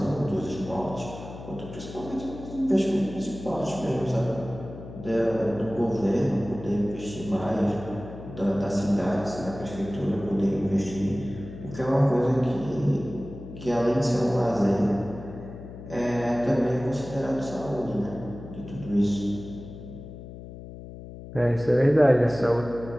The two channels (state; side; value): noise; left; hum, 13 dB below the sound